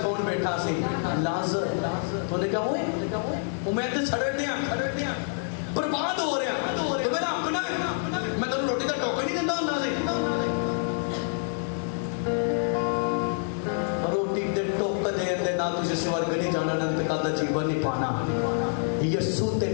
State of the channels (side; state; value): right; silent; 57 dB below the other